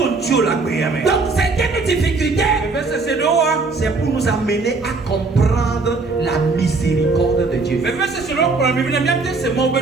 Donc certaines difficultés, c'est pour nous amener à comprendre la miséricorde de Dieu.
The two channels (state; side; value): quieter; left; 3.9 dB